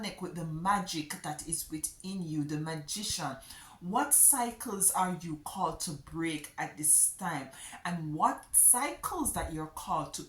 with the magic that is within you, the magician? What cycles are you called to break at this time? And what cycles that you're called to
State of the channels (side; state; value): both; identical; correlation 1.00